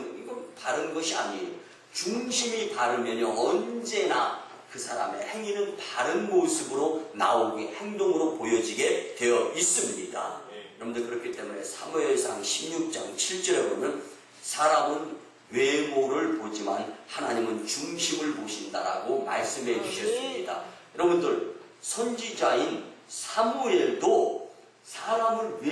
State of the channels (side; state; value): both; identical; correlation 1.00